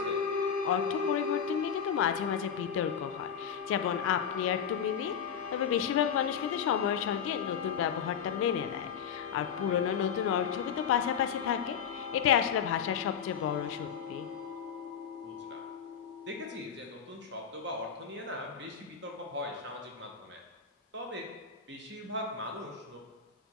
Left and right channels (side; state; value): right; quieter; 7.6 dB